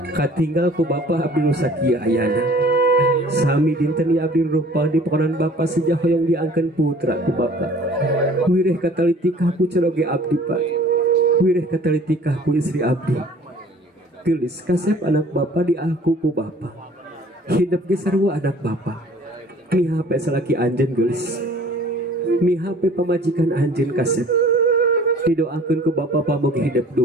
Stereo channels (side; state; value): both; normal; correlation 0.51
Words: Katinggal ku bapak abdi nu sakieu ayana. Sami dinten ieu abdi rupa di pakonan bapak sejah hoyong diangkeun putra ku bapak. Wireh katalitikah ku ceroge abdi Pak. Wireh katalitikah ku istri abdi. Gelis kasep anak bapa diaku ku bapa. Hidup ge sarua anak bapa. Mihape salaki anjeun gelis. Mihape pamajikan anjeun kasep. Didoakeun ku bapa pamugi hidup